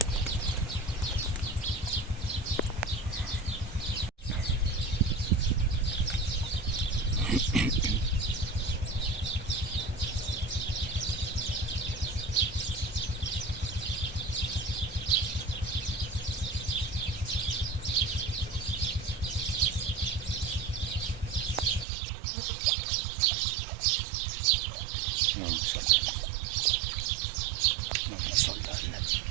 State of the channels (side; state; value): left; drops out; at 21.9 s